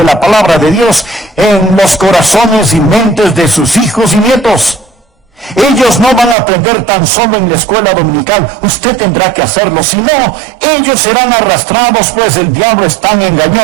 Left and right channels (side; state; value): left; drops out; at 6.4 s